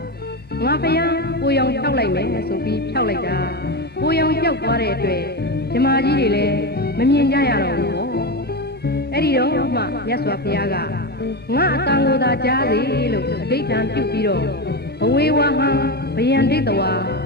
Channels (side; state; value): both; normal; correlation 0.16